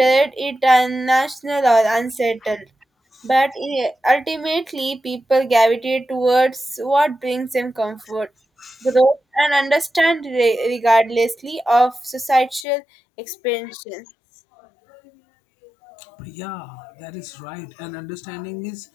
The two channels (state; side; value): drops out; right; at 12.7 s